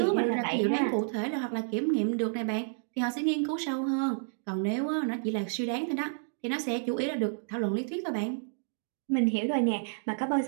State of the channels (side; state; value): left; silent; digital silence